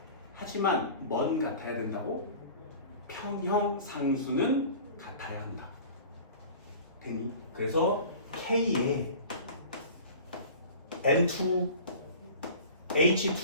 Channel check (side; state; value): both; inverted; correlation -0.41